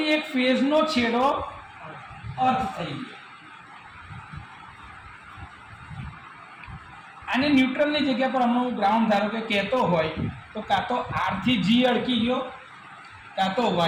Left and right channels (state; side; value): identical; both; correlation 1.00